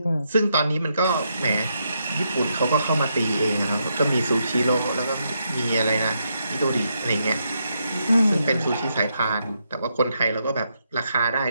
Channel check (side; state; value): both; inverted; correlation -0.80